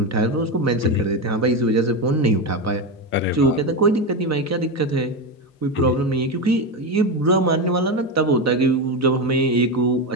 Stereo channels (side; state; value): both; normal; correlation 0.14